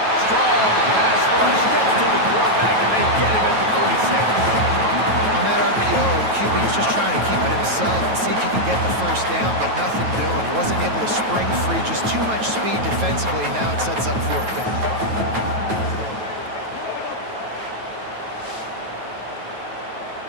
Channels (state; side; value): late; left; 9.2 ms